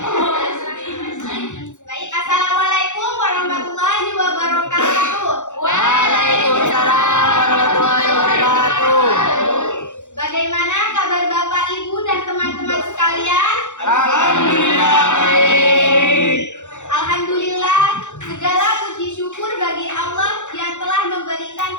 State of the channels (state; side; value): late; right; 0.85 ms